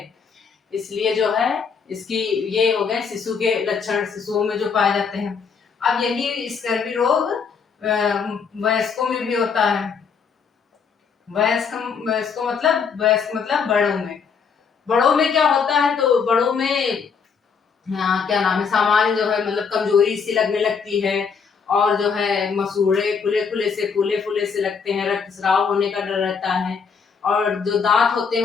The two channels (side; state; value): right; quieter; 5.9 dB